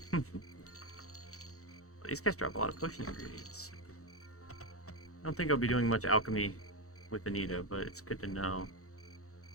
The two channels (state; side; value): late; right; 0.65 ms